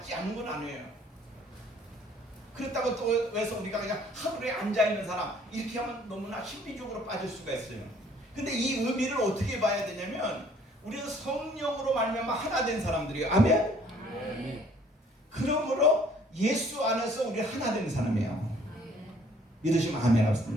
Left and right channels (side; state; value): both; normal; correlation 0.58